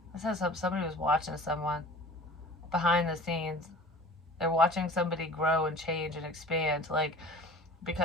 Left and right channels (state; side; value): normal; both; correlation 0.43